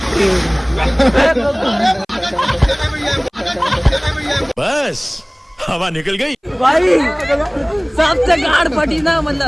बस हवा निकल गई भाई सबसे गाड़ फटी ना,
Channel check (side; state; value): both; identical; correlation 1.00